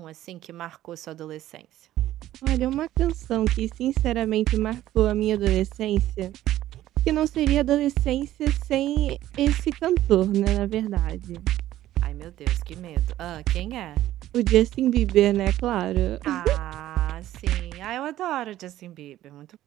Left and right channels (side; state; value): left; quieter; 13.8 dB